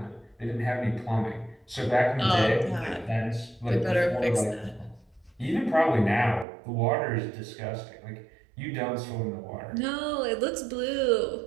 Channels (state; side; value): drops out; left; at 6.5 s